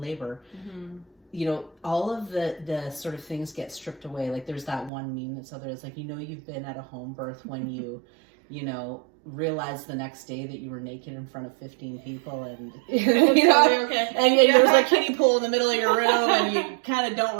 labor, you know, all of the sort of things get stripped away. Like there's that one meme that's out there. It's like, you know, you've been at a home birth when you know, realized the next day that you were naked in front of 15 people, and you know, okay. and there's a kiddie pool in the middle of your room, and you kind of don't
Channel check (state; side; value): drops out; left; at 4.9 s